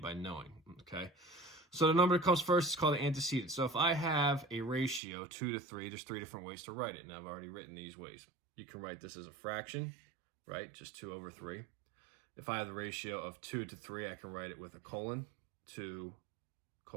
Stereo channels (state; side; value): drops out; left; at 5.0 s